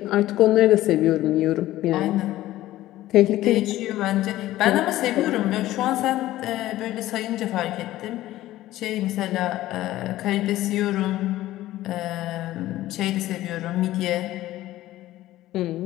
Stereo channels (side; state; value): right; quieter; 15.3 dB